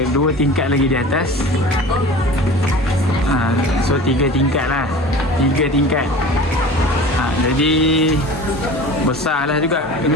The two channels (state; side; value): normal; both; correlation 0.38